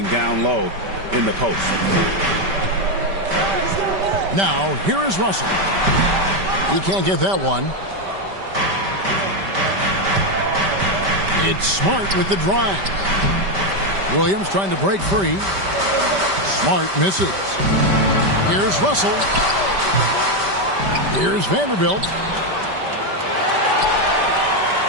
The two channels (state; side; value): late; left; 5.1 ms